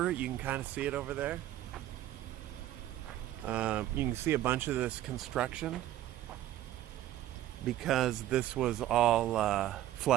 You can kind of see it over there. You can see a bunch of this construction because this was all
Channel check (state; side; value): quieter; left; 13.5 dB